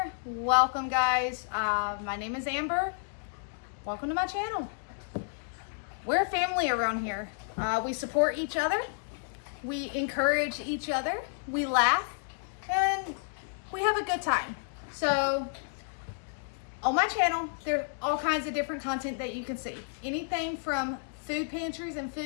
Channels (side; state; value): right; silent; digital silence